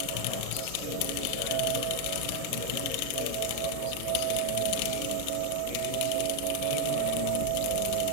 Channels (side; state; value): both; different; correlation 0.00